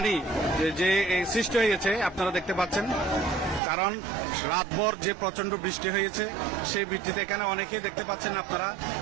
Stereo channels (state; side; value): drops out; left; at 3.6 s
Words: যে সৃষ্টি হয়েছে আপনারা দেখতে পাচ্ছেন। কারণ রাতভর যে প্রচন্ড বৃষ্টি হয়েছে, সেই বৃষ্টিতে এখানে অনেকেই দেখতে পাচ্ছেন আপনারা,